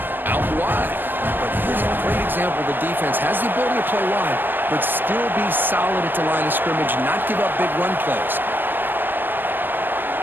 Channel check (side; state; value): left; late; 0.094 ms